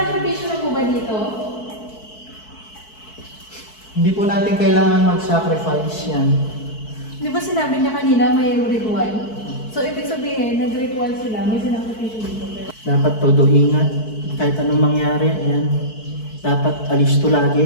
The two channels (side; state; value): right; late; 4.6 ms